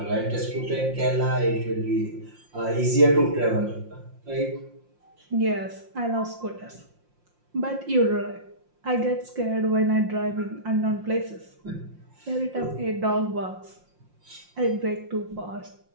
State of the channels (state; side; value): late; left; 5.7 ms